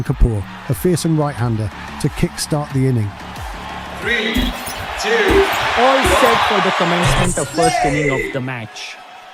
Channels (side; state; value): both; identical; correlation 1.00